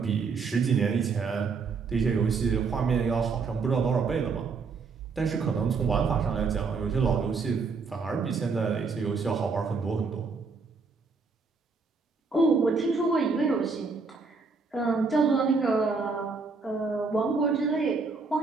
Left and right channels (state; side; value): quieter; left; 4.7 dB